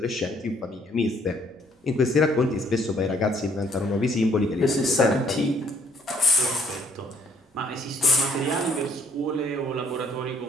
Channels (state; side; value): normal; both; correlation 0.64